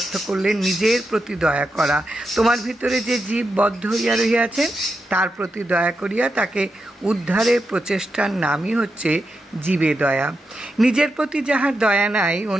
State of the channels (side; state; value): both; normal; correlation 0.87